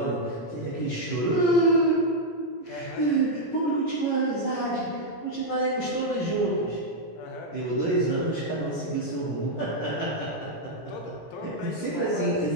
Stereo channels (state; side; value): late; right; 17 ms